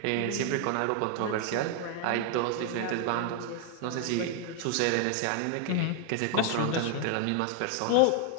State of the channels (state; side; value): different; both; correlation 0.00